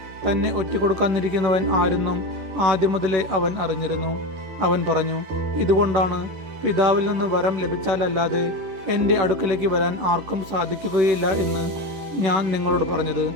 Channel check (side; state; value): left; late; 11 ms